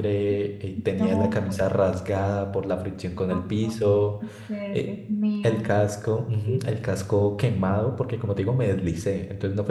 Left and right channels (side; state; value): both; identical; correlation 1.00